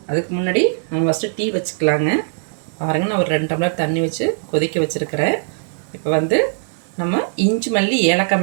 அதுக்கு முன்னாடி நம்ம ஃபஸ்ட்டு டீ வச்சுக்கலாங்க. பாருங்கள், நான் ஒரு 2 டம்ளர் தண்ணி வச்சு கொதிக்க வச்சுருக்கிறேன். இப்போ வந்து நம்ம இஞ்சி மல்லி ஏலக்காய்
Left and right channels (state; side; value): silent; left; 65 dB below the other